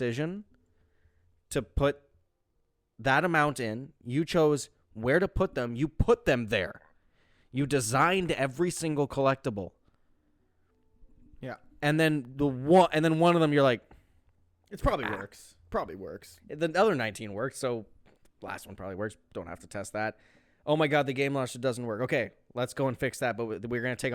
to put that amount in. You chose where to put them. You put them there. You designed every single collectible. Yeah. And then one of them, you're like, It probably works. Probably works. the other 19 worked, so last one probably works. Don't have to test that. Oh my God, the game launcher doesn't work. Okay, let's go and fix that. But we're going to take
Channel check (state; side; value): identical; both; correlation 1.00